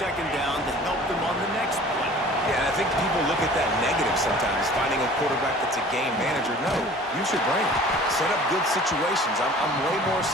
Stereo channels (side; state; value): both; normal; correlation 0.47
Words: down to help them on the next play. Yeah, and I think people look at that negative sometimes, finding a quarterback that's a game manager. No, use your brain. Set up good situations. I'm way more